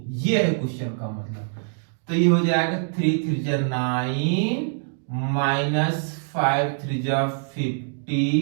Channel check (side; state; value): left; silent; digital silence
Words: ये है क्वेश्चन का मतलब। तो ये हो जाएगा 3 3 9 माइनस 5 3